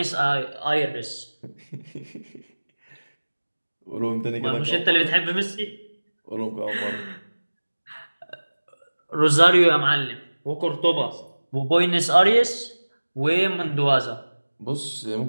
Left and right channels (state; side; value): inverted; both; correlation -1.00